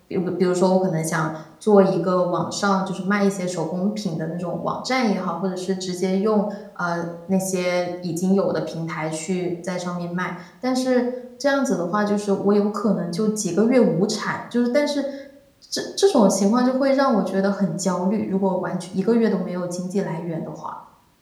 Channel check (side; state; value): both; identical; correlation 1.00